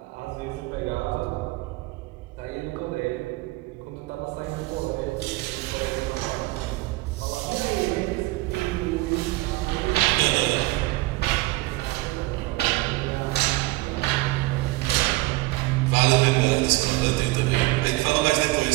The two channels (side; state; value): left; quieter; 21.1 dB